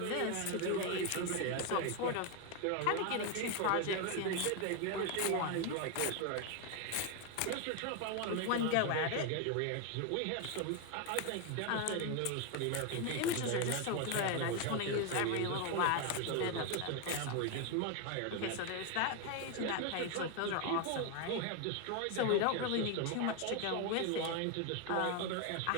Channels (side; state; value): both; different; correlation 0.01